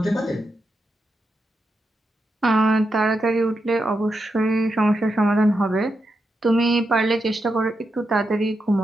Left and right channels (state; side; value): normal; both; correlation 0.86